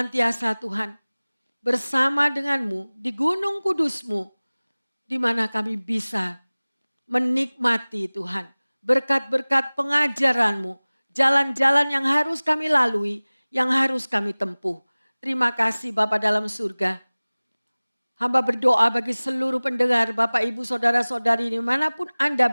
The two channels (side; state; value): both; inverted; correlation -1.00